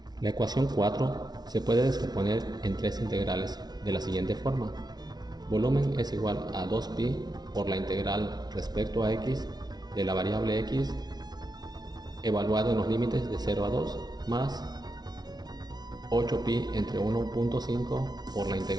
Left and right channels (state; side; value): late; left; 0.19 ms